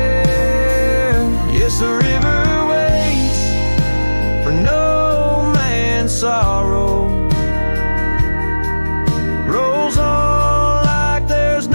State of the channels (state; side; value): inverted; both; correlation -1.00